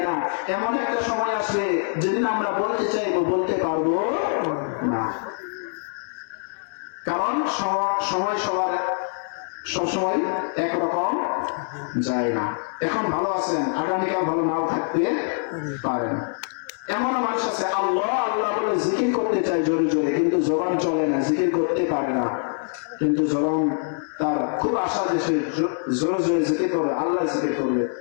না। এমন একটা সময় আসবে যেদিন আমরা বলতে চাইবো, বলতে পারবো না। কারণ সময় সবার সবসময় একরকম যায় না। এখন ভালো আছেন, আগামীকাল ভালো নাও থাকতে পারেন। এমন মানুষ আছে আল্লাহ আল্লাহ বলে জিকির করতে চায় জোরে জোরে, কিন্তু জবান চলে না, জিকির করতে পারে না, কিন্তু জবান তার খুব আশা যে সে জোরে জোরে জিকির করবে, আল্লাহ জিকির করবে,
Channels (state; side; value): silent; right; 62 dB below the other